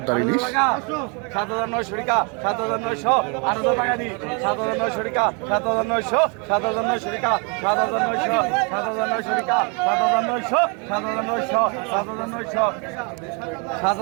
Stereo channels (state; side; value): quieter; left; 34.2 dB